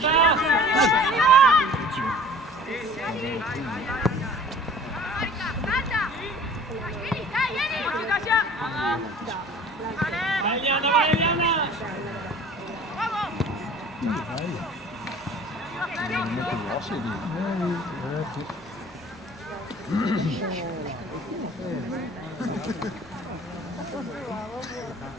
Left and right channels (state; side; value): normal; both; correlation 0.47